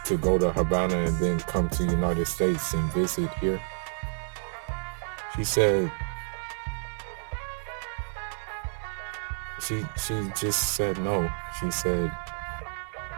go to Havana and then come to the United States and visit here? She said, she just said no. She said,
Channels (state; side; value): silent; left; digital silence